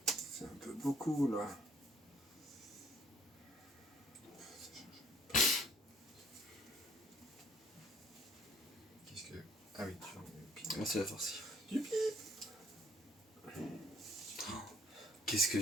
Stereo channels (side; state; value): both; normal; correlation 0.61